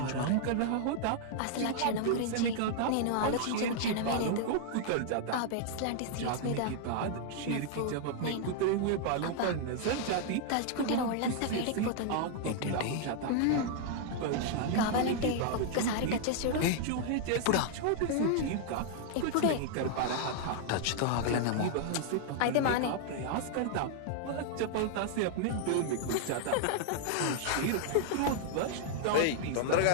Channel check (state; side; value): different; both; correlation -0.01